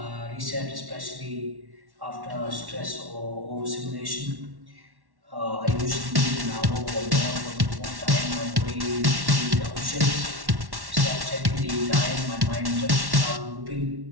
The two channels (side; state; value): left; late; 1.1 ms